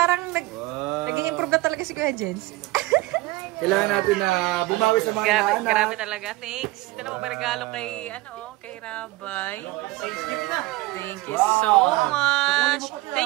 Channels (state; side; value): quieter; left; 20.1 dB